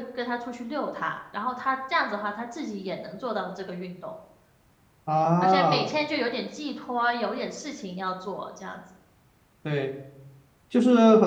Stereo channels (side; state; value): both; identical; correlation 1.00